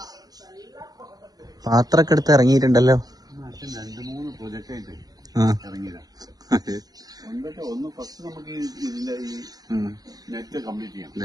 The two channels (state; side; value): late; left; 0.19 ms